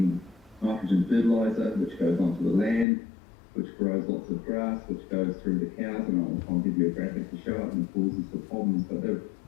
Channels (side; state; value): right; drops out; at 2.9 s